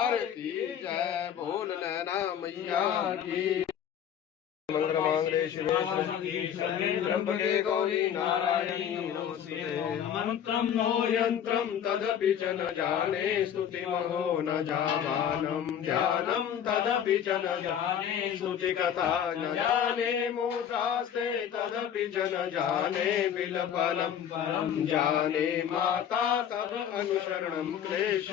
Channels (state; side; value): quieter; right; 9.1 dB